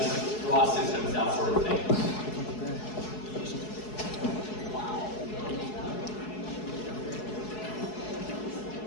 draw systems, that sort of thing.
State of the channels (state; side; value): late; right; 4.7 ms